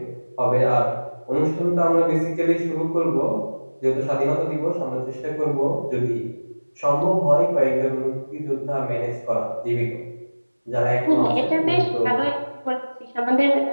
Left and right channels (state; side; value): inverted; both; correlation -1.00